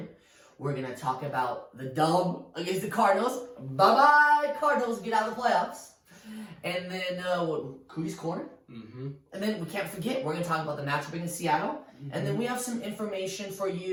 We're going to talk about the dub against the Cardinals. Bye-bye, Cardinals. Get out of the playoffs. And then Kudi's Corner. And then we can't forget, we're going to talk about the matchup against Seattle. And then we have some information for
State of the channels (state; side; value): identical; both; correlation 1.00